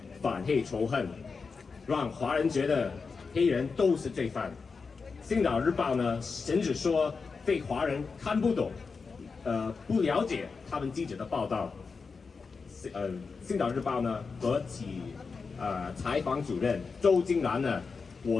反黑仇恨，让华人觉得黑人都是罪犯。星岛日报呢，甚至说被华人看不懂，不了解他们记者的报道。星岛日报呢和其采访主任周金兰呢，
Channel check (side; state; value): right; quieter; 4.9 dB